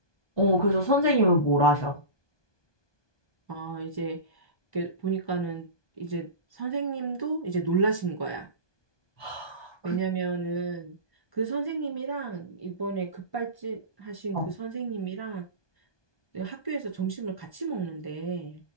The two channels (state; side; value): late; right; 1.2 ms